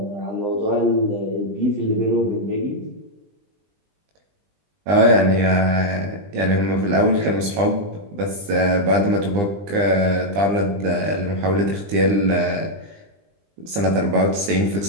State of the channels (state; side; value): late; left; 20 ms